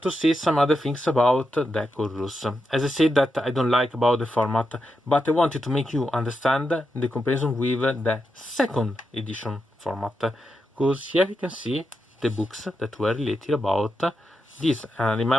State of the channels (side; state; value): both; normal; correlation 0.86